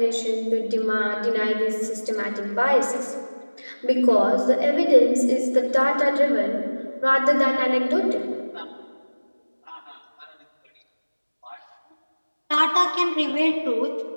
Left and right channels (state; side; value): inverted; both; correlation -1.00